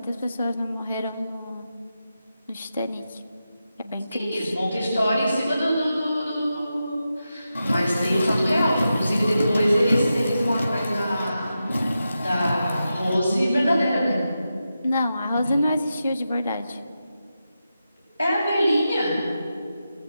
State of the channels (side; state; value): both; inverted; correlation -0.90